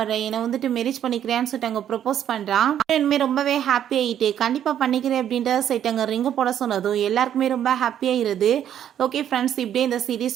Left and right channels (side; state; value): left; quieter; 10.1 dB